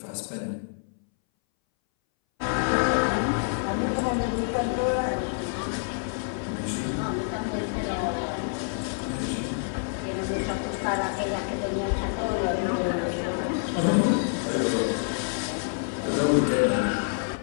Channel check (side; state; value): right; silent; 60 dB below the other